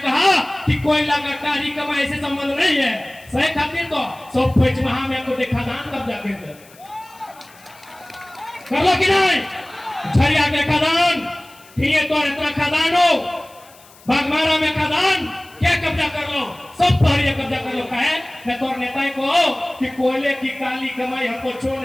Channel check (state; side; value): noise; left; hiss, 25 dB below the sound